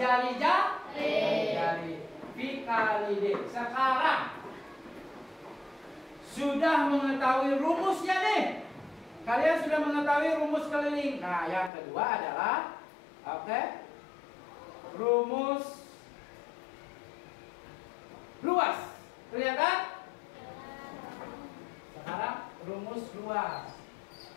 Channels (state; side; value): drops out; right; at 11.7 s